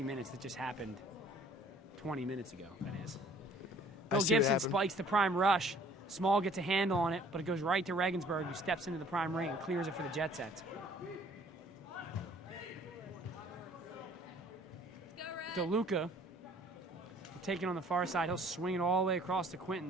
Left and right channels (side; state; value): both; normal; correlation 0.55